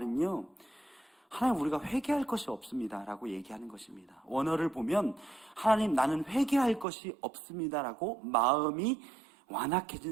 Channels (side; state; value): left; drops out; at 6.9 s